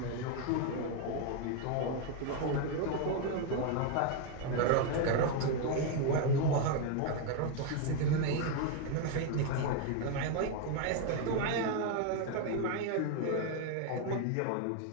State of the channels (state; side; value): different; both; correlation 0.01